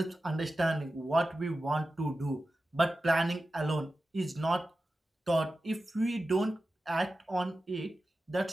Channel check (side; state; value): both; normal; correlation 0.93